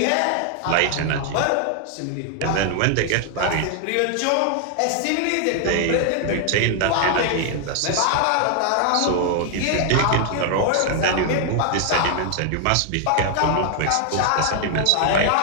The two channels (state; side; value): different; both; correlation 0.00